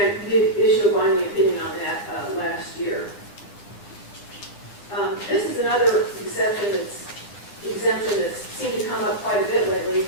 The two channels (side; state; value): right; late; 10 ms